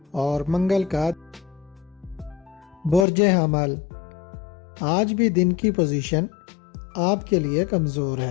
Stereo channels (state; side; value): drops out; right; at 3.1 s